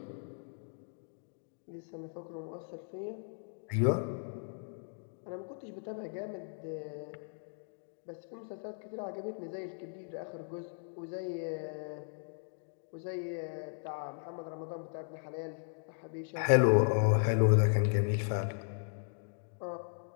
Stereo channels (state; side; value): silent; right; digital silence